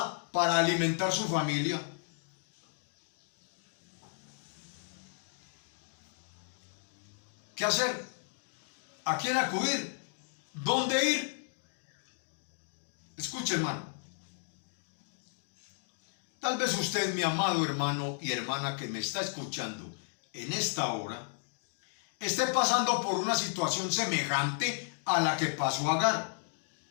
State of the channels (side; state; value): right; silent; digital silence